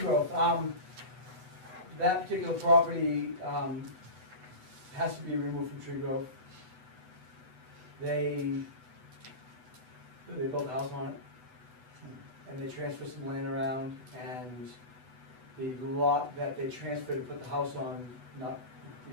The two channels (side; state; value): left; late; 8.0 ms